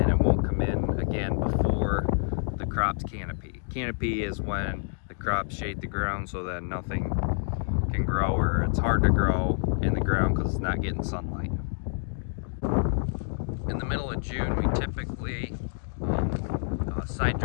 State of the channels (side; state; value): right; silent; digital silence